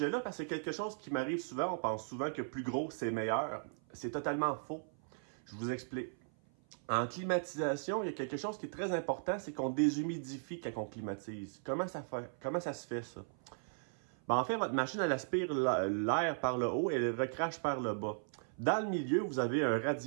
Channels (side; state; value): left; silent; 53 dB below the other